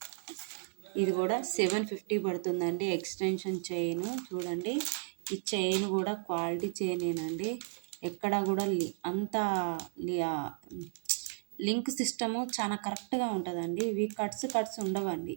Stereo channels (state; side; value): silent; left; digital silence